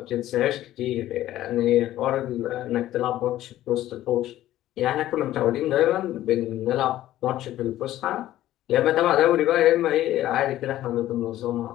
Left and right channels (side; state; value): right; quieter; 13.9 dB